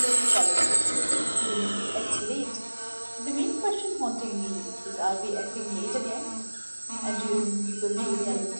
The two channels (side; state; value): both; inverted; correlation -1.00